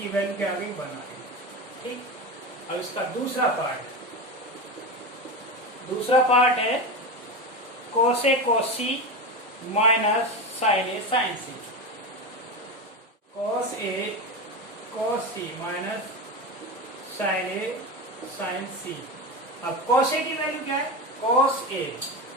वैल्यू क्या आ गई? 1 आ गई, ठीक। अब इसका दूसरा पार्ट है cos A cos C minus sin A sin C। cos A cos C minus sin A sin C। अब cos A की वैल्यू क्या है? cos A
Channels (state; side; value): normal; both; correlation 0.21